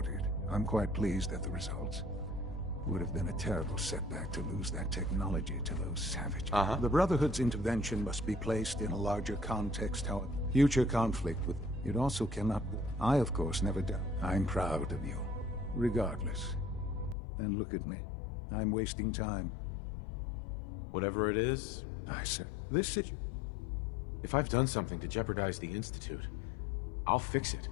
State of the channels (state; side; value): drops out; right; at 17.2 s